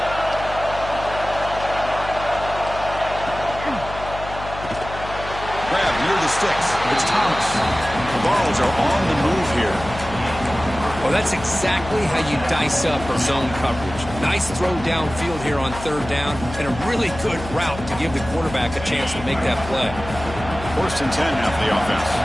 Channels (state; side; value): noise; left; hum, 11 dB below the sound